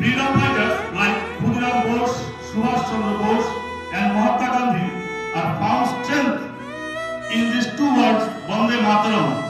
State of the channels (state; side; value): identical; both; correlation 1.00